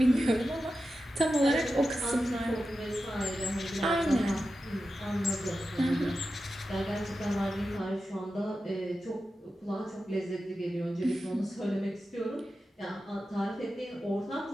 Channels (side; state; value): both; normal; correlation 0.91